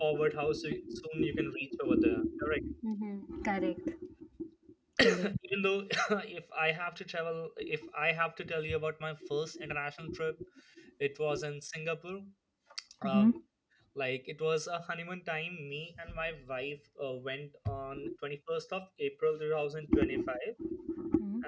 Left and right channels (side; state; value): both; identical; correlation 1.00